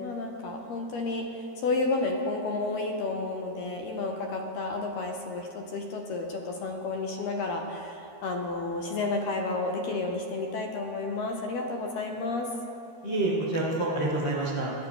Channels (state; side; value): late; right; 13 ms